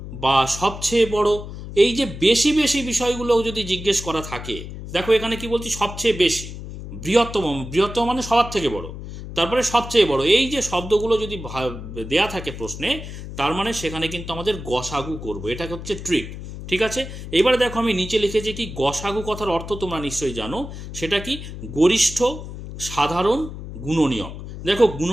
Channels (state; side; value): noise; left; hum, 10 dB below the sound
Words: বা সবচেয়ে বড়, এই যে বেশি বেশি বিষয়গুলো যদি জিজ্ঞেস করা থাকে, দেখো এখানে কি বলছি, সবচেয়ে বেশি, বৃহত্তম, বৃহত্তম মানে সবার থেকে বড়, তারপরে সবচেয়ে বড়, এই যে শব্দগুলো যদি দেয়া থাকে প্রশ্নে, তার মানে সেখানে কিন্তু আমাদের গসাগু করব, এটা হচ্ছে ট্রিক। ঠিক আছে, এবারে দেখো আমি নিচে লিখেছি কি, গসাগু কথার অর্থ তোমরা নিশ্চয়ই জানো, সেটা কি, গরিষ্ঠ, সাধারণ, গুণনীয়ক। দেখো